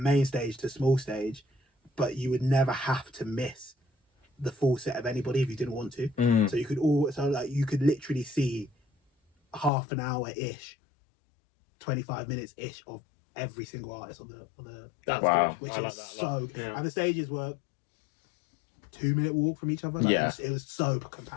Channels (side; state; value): right; drops out; at 9.7 s